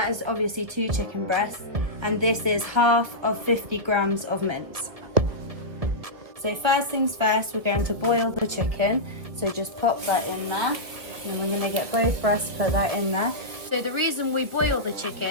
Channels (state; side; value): late; left; 1.9 ms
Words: is obviously 2 chicken breasts. And this is half of 50 grams of mince. So first things first, we're going to boil the chicken. So just pop that in there. And then we're going to get both breasts, put that in there. So the reason we boil the